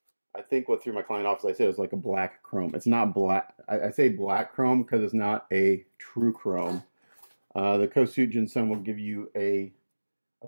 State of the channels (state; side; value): inverted; both; correlation -1.00